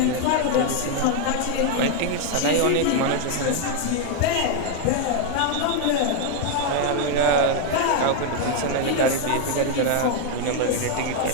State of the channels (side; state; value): both; different; correlation 0.00